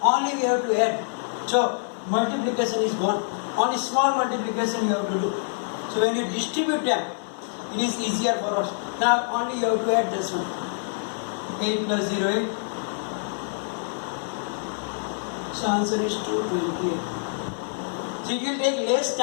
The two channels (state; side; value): silent; right; digital silence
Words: only we have to add. So multiplication is gone. Only small multiplication you have to do. So when you distribute them, it is easier for us. Now only you have to add this one. 8 plus 0, 8. So answer is 228. So it will take less